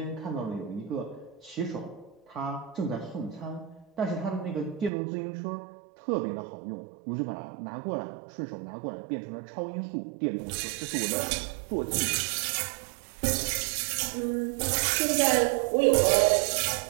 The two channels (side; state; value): left; drops out; at 4.9 s